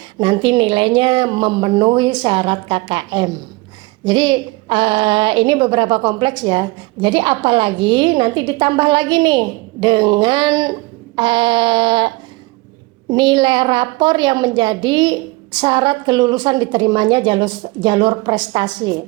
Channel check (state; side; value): quieter; left; 23.2 dB